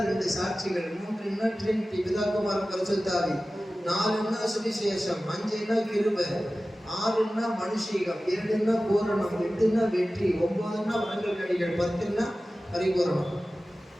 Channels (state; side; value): normal; both; correlation 0.96